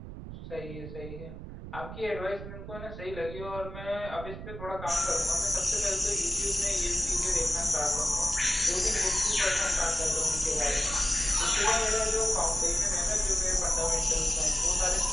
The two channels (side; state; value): right; noise; rumble, 10 dB below the sound